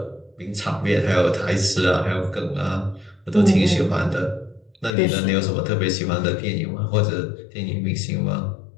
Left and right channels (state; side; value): drops out; right; at 5.0 s